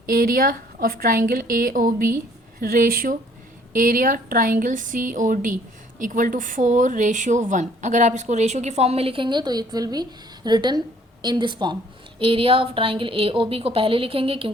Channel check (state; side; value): normal; both; correlation 0.60